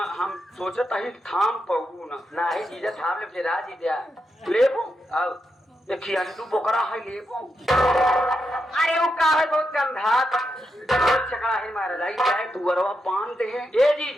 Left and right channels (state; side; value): normal; both; correlation 0.85